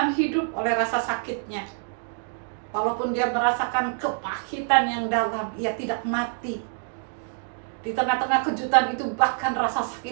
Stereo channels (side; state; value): left; silent; 61 dB below the other